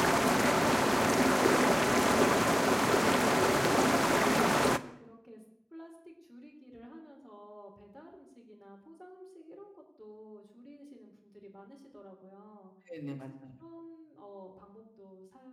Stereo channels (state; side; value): identical; both; correlation 1.00